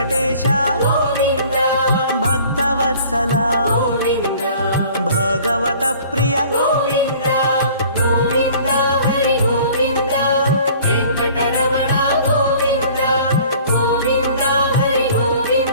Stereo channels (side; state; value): both; inverted; correlation -0.50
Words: గోవింద భక్తవత్సల గోవింద భగవత ప్రియ గోవింద గోవింద హరి గోవింద వెంకటరమణ గోవింద గోవింద హరి